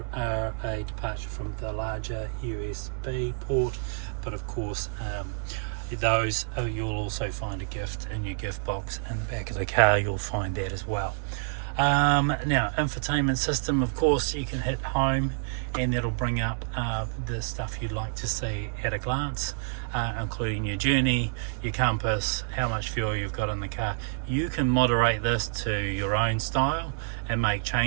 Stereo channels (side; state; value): left; silent; 58 dB below the other